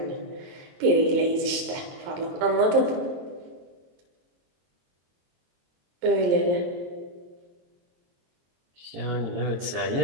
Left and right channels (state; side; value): late; left; 22 ms